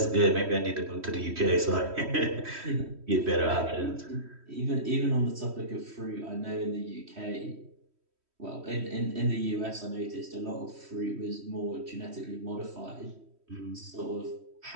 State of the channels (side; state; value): left; late; 3.1 ms